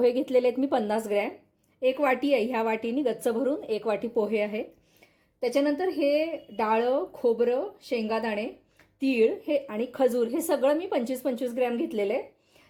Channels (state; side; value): identical; both; correlation 1.00